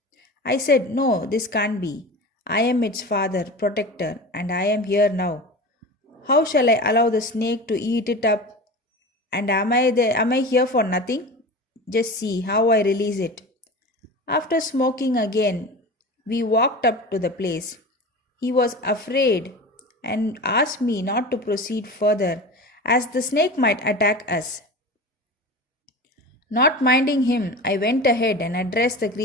I said, no, this can't be. I am its father, protector, and I am here now. How shall I allow the snake to eat it up? And am I here for nothing? Just see how I release it. After smoking again, we walked up to the place. He was afraid and asked me not to proceed further, as the snake might attack us. Not minding him, I went ahead and addressed the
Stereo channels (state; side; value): normal; both; correlation 0.31